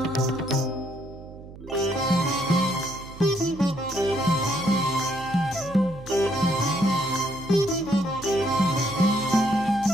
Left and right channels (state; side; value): noise; right; hum, 16 dB below the sound